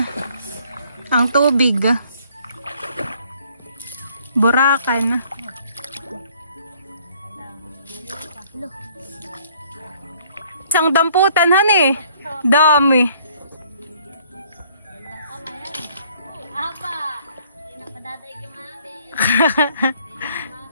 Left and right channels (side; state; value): both; inverted; correlation -0.61